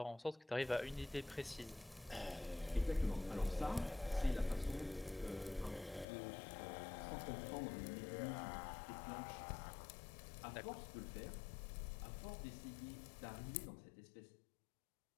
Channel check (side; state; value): right; drops out; at 6.1 s